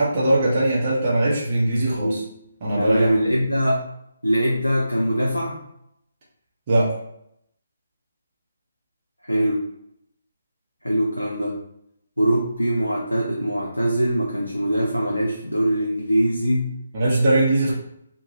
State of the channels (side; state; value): both; inverted; correlation -0.89